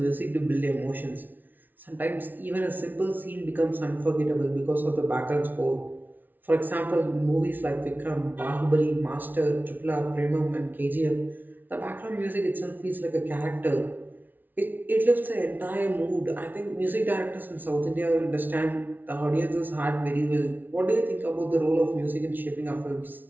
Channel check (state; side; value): late; left; 0.086 ms